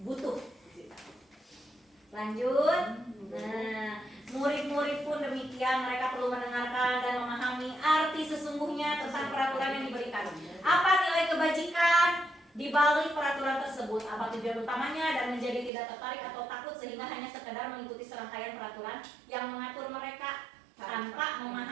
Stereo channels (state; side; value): drops out; left; at 15.7 s